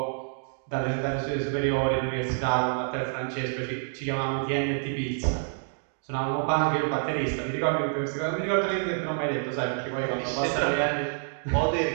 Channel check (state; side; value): silent; left; 60 dB below the other